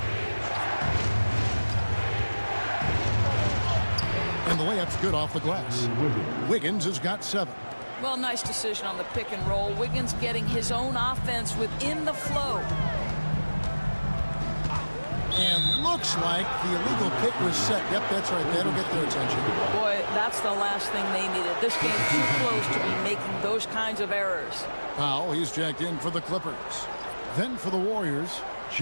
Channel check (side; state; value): both; inverted; correlation -1.00